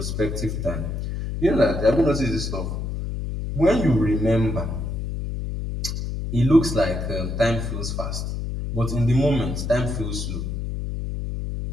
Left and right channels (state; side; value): noise; left; hum, 4 dB below the sound